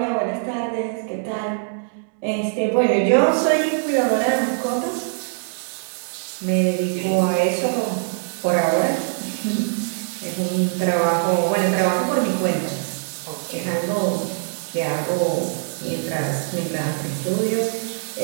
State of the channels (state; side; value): silent; left; digital silence